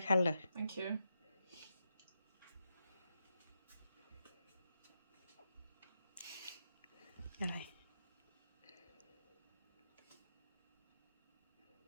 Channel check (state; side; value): inverted; both; correlation -0.86